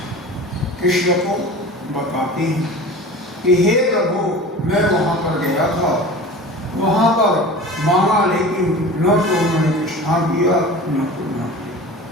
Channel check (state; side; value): normal; both; correlation 0.37